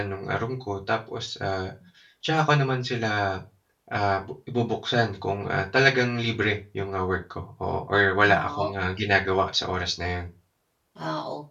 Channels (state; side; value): identical; both; correlation 1.00